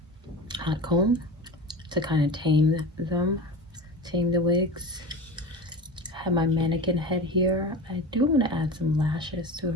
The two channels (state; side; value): normal; both; correlation 0.29